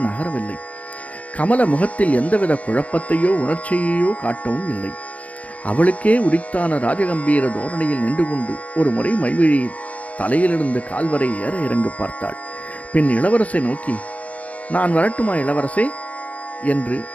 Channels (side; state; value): right; late; 0.066 ms